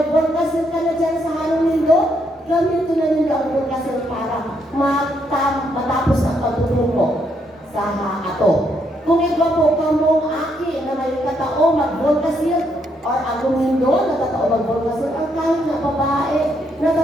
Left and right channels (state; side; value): normal; both; correlation 0.75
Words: forecasting ka na dyan sa Halong Lindo, gamitin na nila ang forecasting para matapos ang pagtuturo sa ato. Kung iba po kamong aki na may katao mag-forecasting or ang Lindo na katao mag-forecasting, ang kahit na babae na